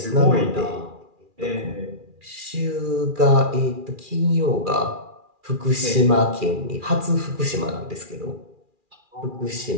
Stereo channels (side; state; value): left; late; 2.4 ms